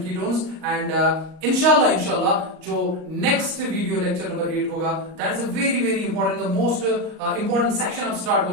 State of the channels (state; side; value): late; left; 38 ms